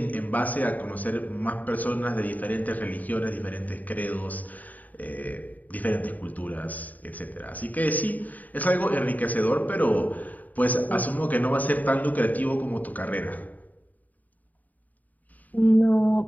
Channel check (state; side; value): late; right; 0.077 ms